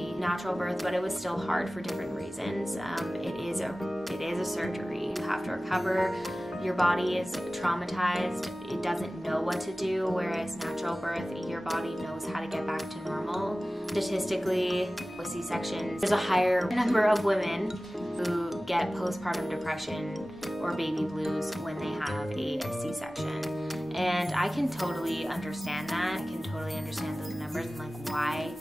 natural birth, but it was still hard for different reasons. It is a surgery. You have to recover. Your body is traumatized. It doesn't know what to do, whereas natural birth, your body knows how to get back to normal. Statistically, with C-sections, there's a higher number of women who get postpartum depression or baby blues when they have a C-section. And I can totally understand that. I can totally understand those numbers and like why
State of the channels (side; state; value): both; normal; correlation 0.97